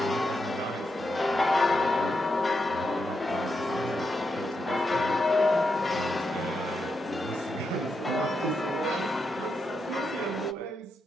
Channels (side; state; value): both; normal; correlation 0.84